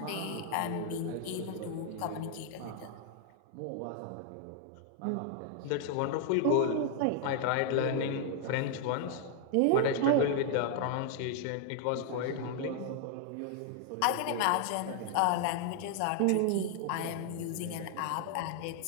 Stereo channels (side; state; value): both; different; correlation 0.00